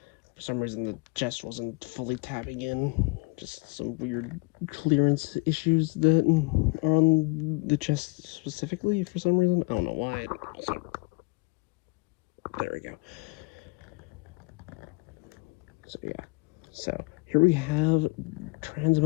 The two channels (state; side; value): quieter; right; 27.0 dB